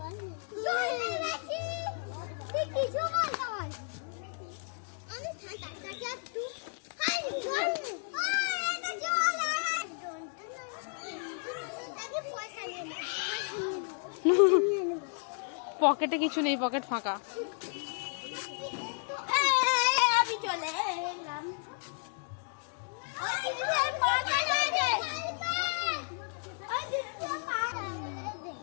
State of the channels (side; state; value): right; silent; 56 dB below the other